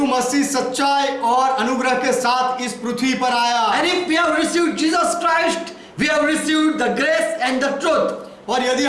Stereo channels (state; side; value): identical; both; correlation 1.00